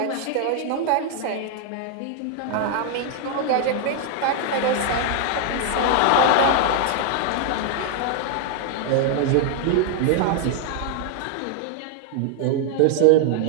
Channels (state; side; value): different; both; correlation 0.00